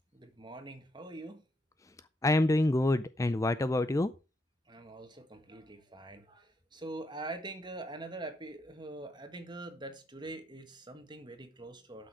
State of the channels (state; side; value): normal; both; correlation 0.78